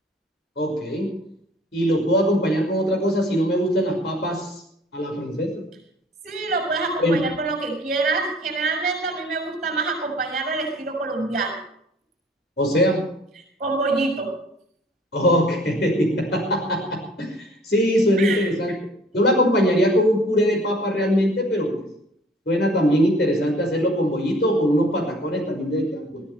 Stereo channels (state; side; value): normal; both; correlation 0.53